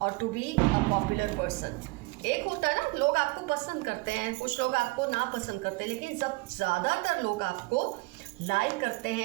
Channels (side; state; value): left; quieter; 25.0 dB